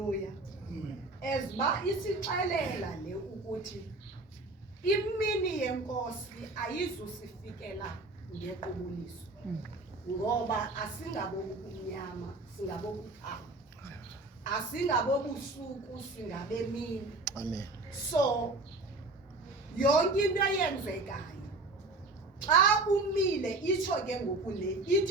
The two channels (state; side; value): quieter; left; 3.1 dB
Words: Ezba isixelela le ukuthi imini yenkosi ayizusifikela ngequbuliso. Ngoba asingabokumnyama, singabokukhanya. Asingabobusuku, singabemini. Amen. So yonke into eyenzekayo xa umile itsho ke ngokule